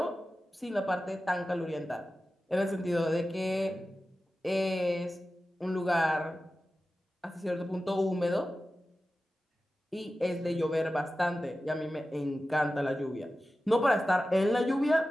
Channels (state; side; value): normal; both; correlation 0.94